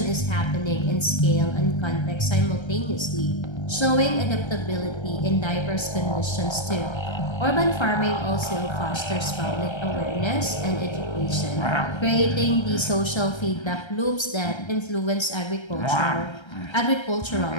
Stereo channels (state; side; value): late; right; 1.3 ms